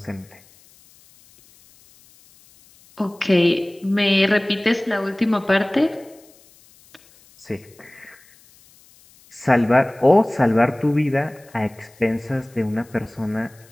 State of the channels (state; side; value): noise; left; hiss, 28 dB below the sound